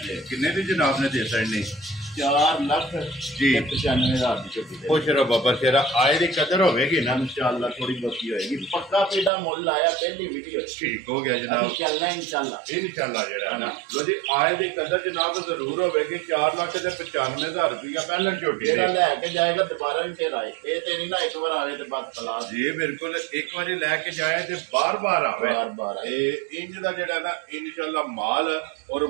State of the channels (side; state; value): left; drops out; at 9.3 s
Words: किन्ने दी जनाब ने दे सकनी 4 लाख जी 95,000 की झोटी खुश रहो बाबा शेरा आए दी कदर होगी ना इंशाल्लाह थोड़ी बहुती होएगी पक्का पेड़ा मोल आया पहली वीडियो ठीक हो गया जनाब चलना इंशाल्लाह जेड़ा है ना लो जी आए दी कदर जनाब जरूर होगी 4 लाख ते 95,000 रुपया पहलन झोटी जेड़ा लेके जाएगा दोबारा भी फिर आए ये ते नहीं ना एक बार आवे ते बस तलाश जी बिल्कुल एक बारी लेके जाए ते बार बार आवे बार इंज दा जेड़ा ना इंशाल्लाह माल और